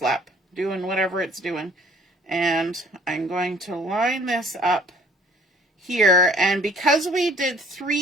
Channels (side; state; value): both; normal; correlation 0.55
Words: doing whatever it's doing. And I'm going to line this up here, and because we did